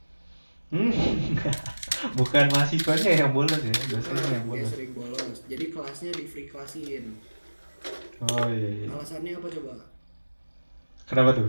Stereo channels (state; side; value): inverted; both; correlation -1.00